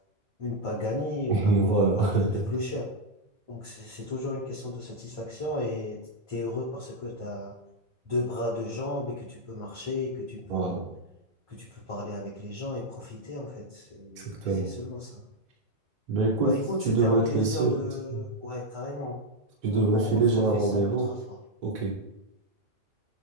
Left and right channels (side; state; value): left; late; 2.2 ms